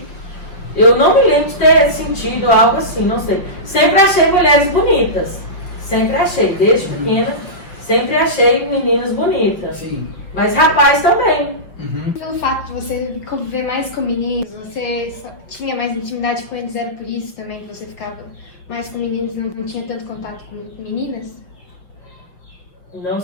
Eu não me lembro de ter sentido algo assim, não sei. Sempre achei mulheres bonitas. Sempre achei, desde pequena, sempre achei meninas bonitas. Sim. Mas rapaz também. Pelo fato de você conviver mais com meninos, você tinha mais intimidade com eles, era por isso também que você ficava mais com meninos, não tinha tanto contato com meninas? Não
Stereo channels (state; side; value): late; right; 5.8 ms